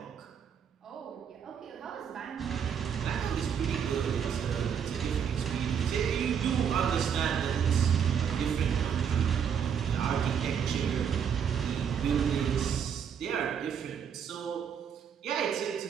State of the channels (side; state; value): left; quieter; 7.7 dB